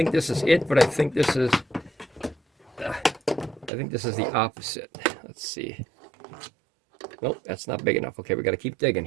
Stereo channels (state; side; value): drops out; left; at 3.7 s